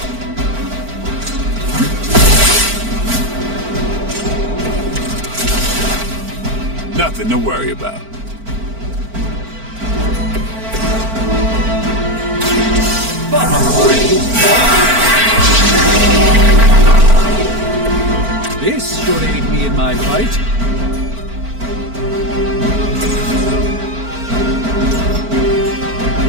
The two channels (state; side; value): late; left; 4.5 ms